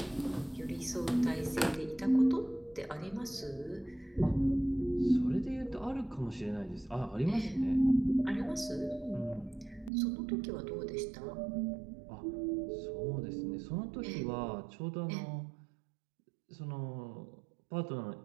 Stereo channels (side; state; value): left; drops out; at 9.9 s